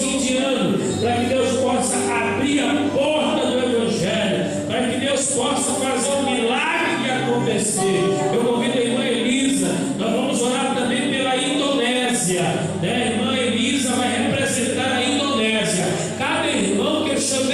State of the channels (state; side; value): identical; both; correlation 1.00